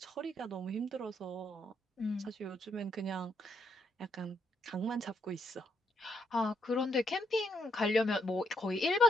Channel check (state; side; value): normal; both; correlation 0.75